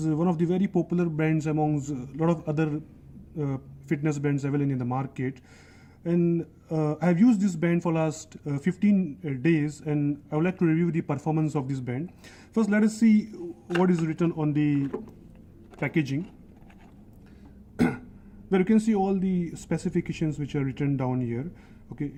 one of the very popular bands amongst a lot of other fitness bands available in the market. And I have used this band for last 15 days, and I would like to review the performance of this band. First, let us see what is written on the packaging, where you can see all the specifications which are written down here.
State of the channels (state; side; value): identical; both; correlation 1.00